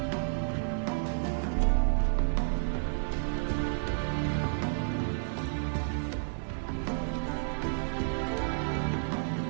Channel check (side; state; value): left; silent; digital silence